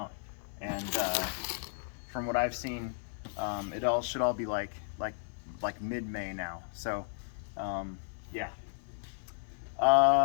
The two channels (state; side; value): silent; right; digital silence